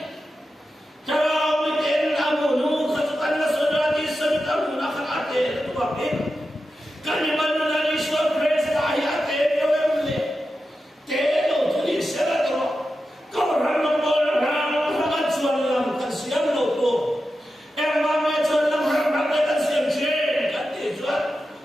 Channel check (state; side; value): normal; both; correlation 0.91